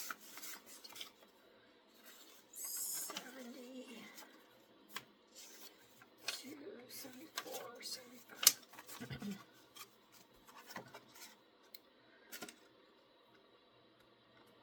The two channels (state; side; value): identical; both; correlation 1.00